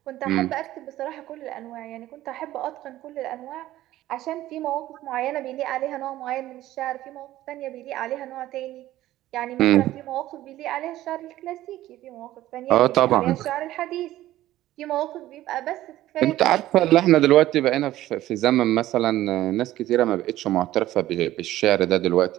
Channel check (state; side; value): quieter; left; 14.8 dB